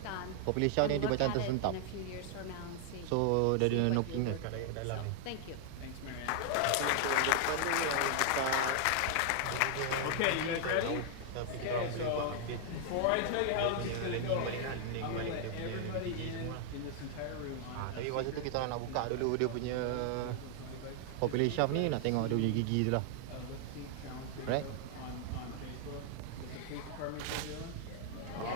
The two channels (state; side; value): different; both; correlation 0.00